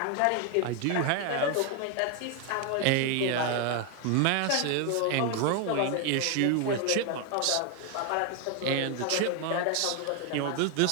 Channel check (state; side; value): different; both; correlation 0.01